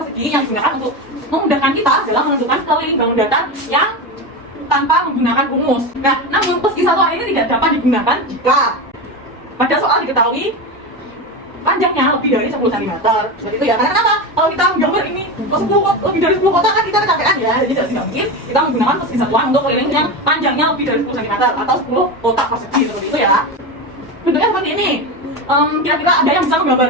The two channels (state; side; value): normal; both; correlation 0.20